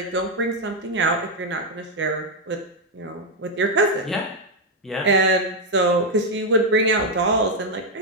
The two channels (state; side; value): normal; both; correlation 0.02